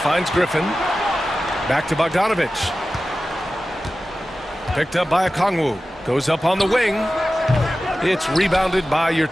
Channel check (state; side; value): normal; both; correlation 0.95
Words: Griffin. Back to Bogdanovic. Picked up by Okongwu. Goes up on the wing. It's rebounded by